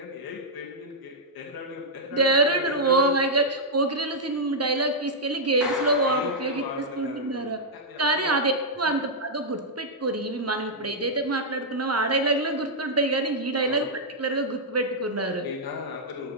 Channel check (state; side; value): normal; both; correlation -0.06